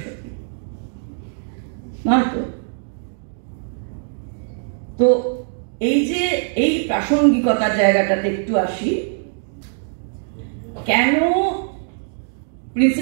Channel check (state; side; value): silent; left; digital silence